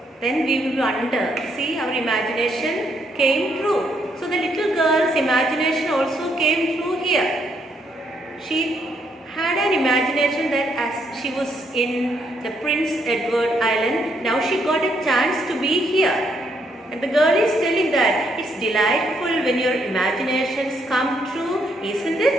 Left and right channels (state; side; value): normal; both; correlation 0.74